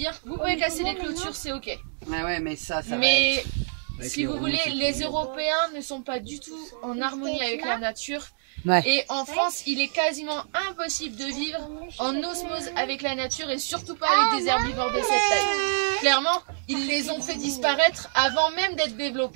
vous pouvez casser les clôtures, c'est ok. Ouais, mais ça va mais si vous voulez, les Européens ne sont pas du tout en harmonie avec la nature. Ouais. Et en France, il est quasiment impossible de vivre en osmose avec la nature et surtout pas avec des herbivores de cette taille. Clairement, ils les ont fait disparaître avant même d'être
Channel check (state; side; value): silent; left; digital silence